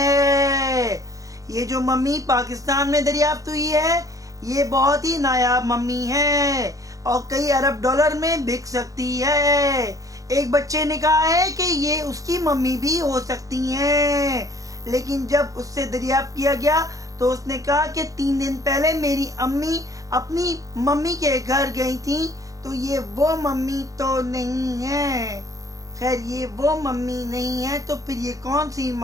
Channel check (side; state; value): left; late; 0.17 ms